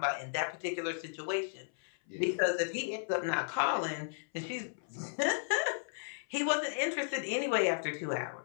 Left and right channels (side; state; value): right; silent; 55 dB below the other